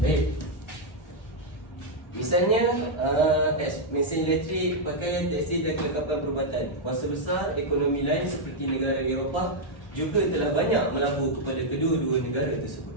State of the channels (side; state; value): right; late; 1.3 ms